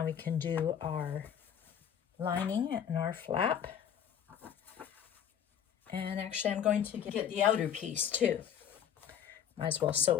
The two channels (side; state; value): right; quieter; 8.8 dB